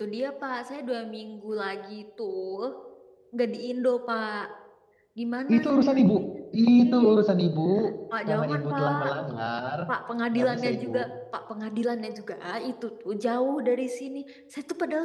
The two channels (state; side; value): identical; both; correlation 1.00